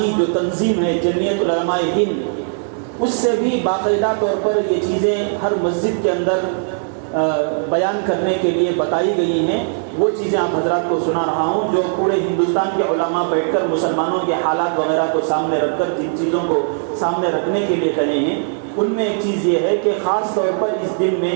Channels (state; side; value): silent; left; 67 dB below the other